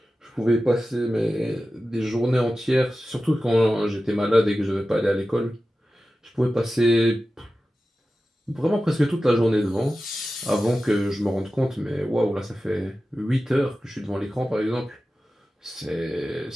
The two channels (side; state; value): both; normal; correlation 0.94